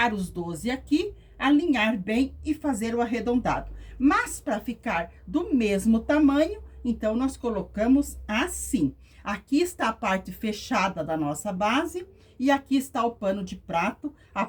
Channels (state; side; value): identical; both; correlation 1.00